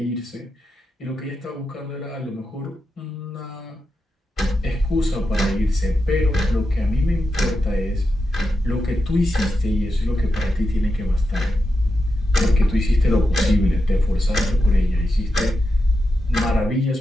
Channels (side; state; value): both; normal; correlation 0.88